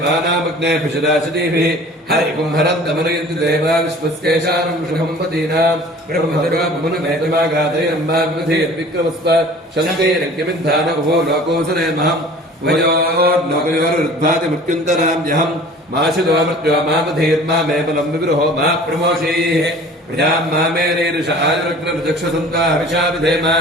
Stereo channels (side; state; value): both; normal; correlation 0.45